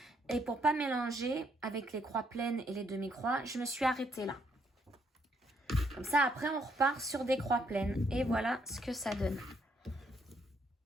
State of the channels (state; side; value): normal; both; correlation 0.72